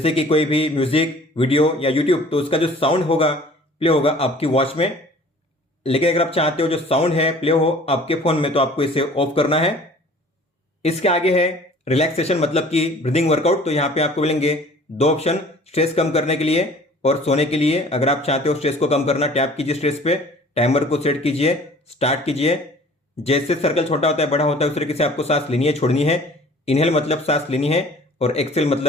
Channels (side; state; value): both; normal; correlation 0.49